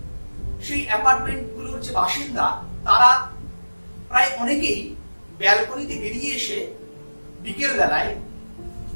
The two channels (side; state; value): both; inverted; correlation -1.00